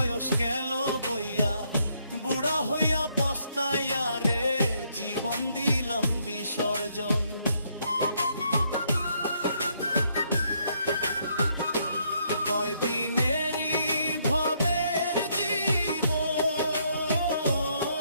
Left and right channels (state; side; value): inverted; both; correlation -0.72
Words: গেল বইয়া, বুড়া হইয়া পস্তাইয়া রে জীবন দিলাম বিসর্জন। কয়দিনেরই ভবের জীবন,